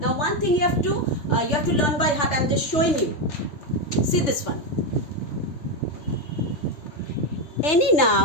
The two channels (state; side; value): late; right; 3.4 ms